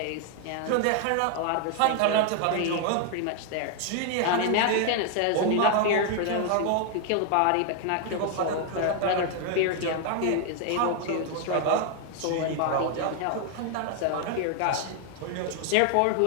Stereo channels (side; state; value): both; different; correlation 0.00